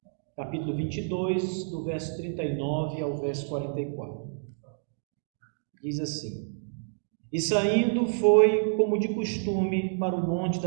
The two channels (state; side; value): silent; left; digital silence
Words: capítulo 22, do verso 39 ao verso 44. Diz assim: E saindo foi, como de costume, para o Monte